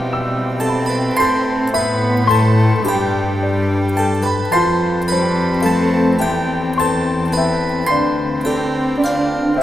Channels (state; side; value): normal; both; correlation 0.88